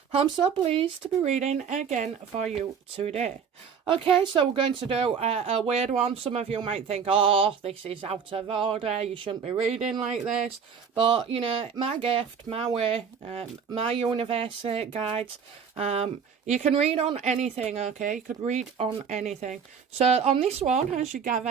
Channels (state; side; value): quieter; left; 6.7 dB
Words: I'm so pleased to be reading again for you today. Okay, so we're going to do a weird one. Some of you might think, oh, this is out of order, you shouldn't be reading like this. But, you know, my gift, my way, my universe guides. You can read on anything, okay? You could read on anything. So on this one, as you